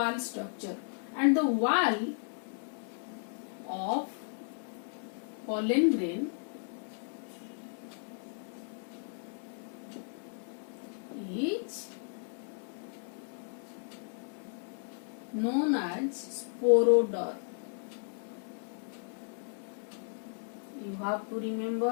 structure, and the wall of pollen grain is known as sporoderm. You have to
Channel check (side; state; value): right; silent; digital silence